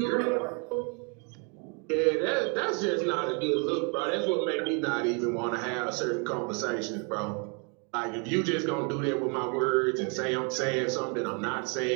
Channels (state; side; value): quieter; left; 36.1 dB